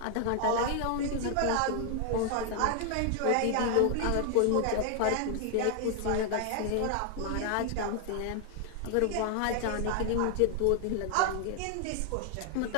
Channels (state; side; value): different; both; correlation 0.00